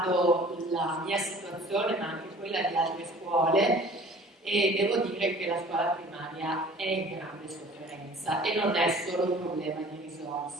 la mia situazione, ma anche quella di altre scuole, e devo dire che la scuola primaria è in grande sofferenza e non è solo un problema di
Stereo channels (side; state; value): both; normal; correlation 0.48